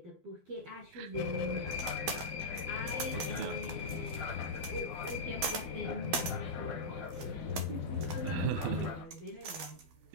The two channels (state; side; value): late; left; 12 ms